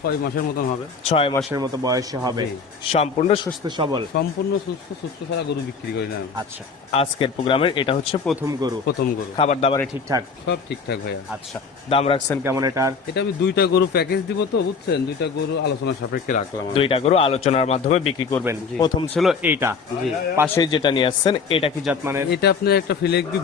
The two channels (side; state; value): right; quieter; 5.3 dB